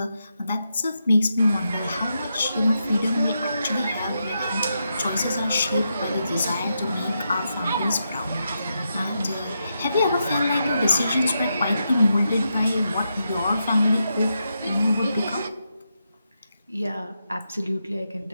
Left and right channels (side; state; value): both; inverted; correlation -0.84